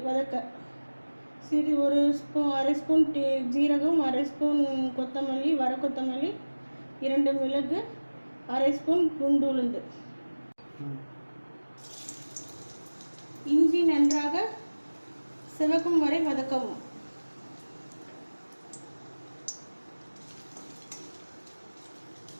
வதக்க ஒரு ஸ்பூன், அரை ஸ்பூன் ஜீரகம், அரை ஸ்பூன் கொத்தமல்லி, வர கொத்தமல்லி, 2 மிளகு, அரை ஸ்பூன் குண்டு உளுந்து. இஞ்சி நன்றாக சிவக்கும் வரை வதக்கவும்.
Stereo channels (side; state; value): both; inverted; correlation -1.00